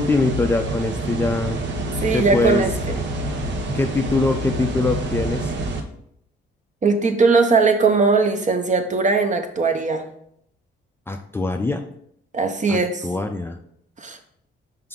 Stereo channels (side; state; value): both; normal; correlation 0.53